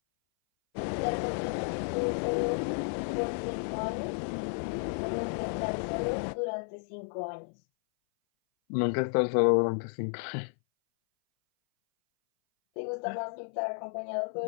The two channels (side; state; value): right; silent; 56 dB below the other